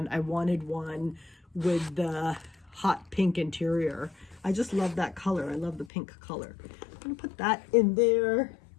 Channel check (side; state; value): right; drops out; at 5.9 s